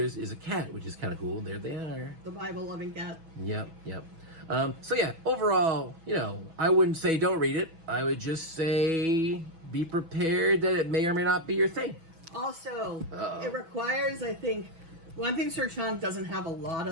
is a cat, which is kind of cool. There they are. The Bible-loving cat. Yep. So yeah, overall, I wouldn't say don't read it. I would just say be prepared that it may or may not be your thing. Also, it requires, I think, One thing Sir Chonk doesn't have a lot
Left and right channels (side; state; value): left; late; 6.1 ms